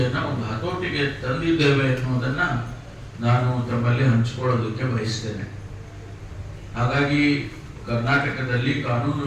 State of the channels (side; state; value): both; identical; correlation 1.00